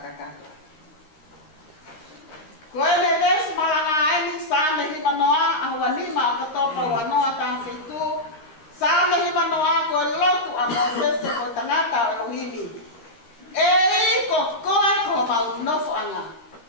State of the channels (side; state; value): right; late; 13 ms